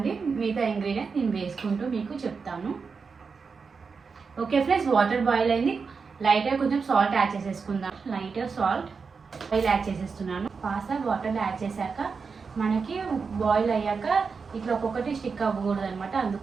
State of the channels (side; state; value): left; quieter; 5.2 dB